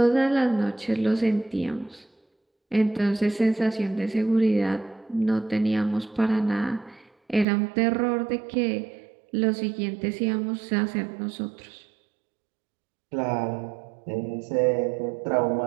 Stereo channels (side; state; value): left; drops out; at 7.5 s